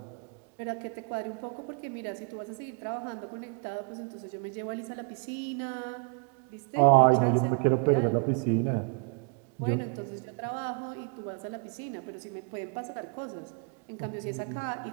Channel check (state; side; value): quieter; left; 38.6 dB